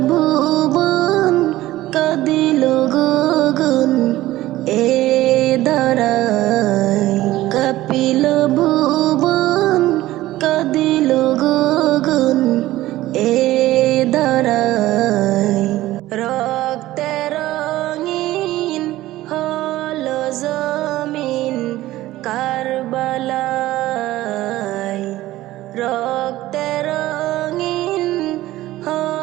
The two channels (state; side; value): quieter; left; 16.2 dB